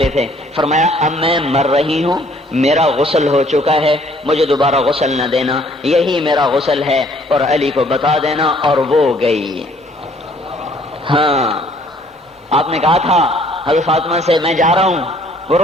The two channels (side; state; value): both; normal; correlation 0.60